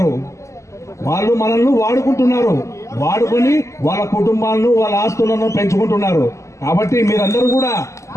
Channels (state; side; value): late; right; 0.14 ms